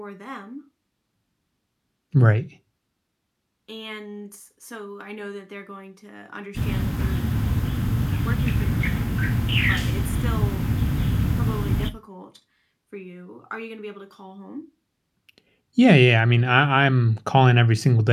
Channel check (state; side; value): identical; both; correlation 1.00